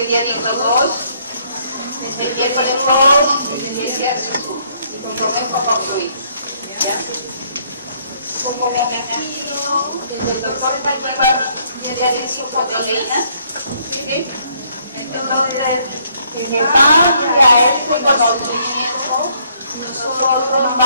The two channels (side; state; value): both; inverted; correlation -0.67